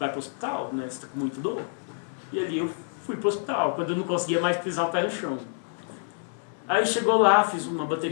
para o hospital, né? Você está com muito dor. E ali eu fui para o hospital, quando eu não conseguia mais pisar o pé no chão. Aí chegou lá, fiz uma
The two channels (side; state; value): right; silent; digital silence